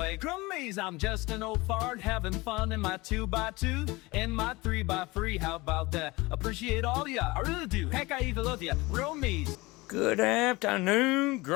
Grummies, I'm just an old fart having fun in my 2x2 and my 3x3. How about that? Appreciate all ya, I really do. Heck, I even love ya. Grummies. Good afternoon,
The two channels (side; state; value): right; quieter; 22.3 dB